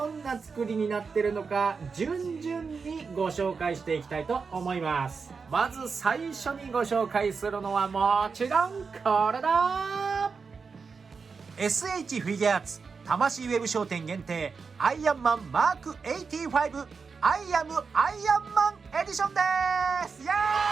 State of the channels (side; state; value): left; quieter; 5.1 dB